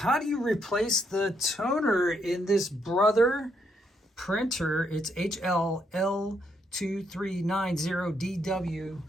do you replace the toner in this Brother printer? It's HL-L2390DW.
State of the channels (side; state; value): both; normal; correlation 0.75